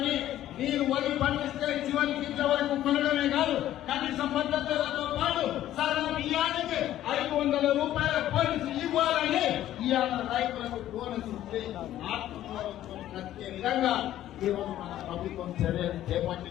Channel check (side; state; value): right; quieter; 12.9 dB